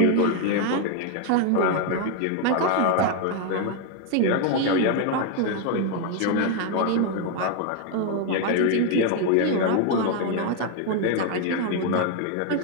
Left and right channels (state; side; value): different; both; correlation 0.01